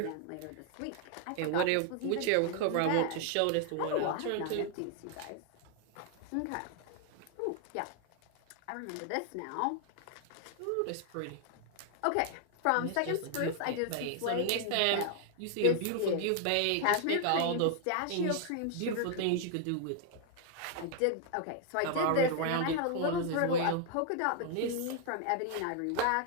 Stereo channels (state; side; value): different; both; correlation 0.00